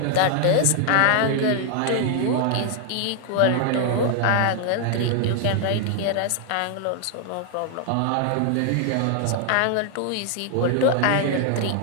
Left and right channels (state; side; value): different; both; correlation 0.00